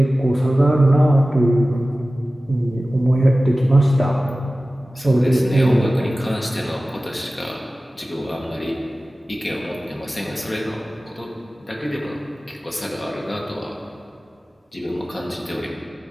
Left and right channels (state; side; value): normal; both; correlation 0.96